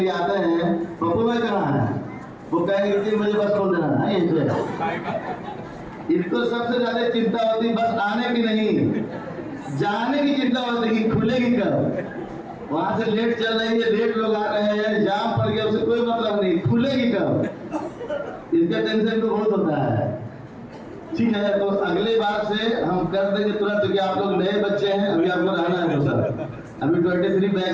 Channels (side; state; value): both; identical; correlation 1.00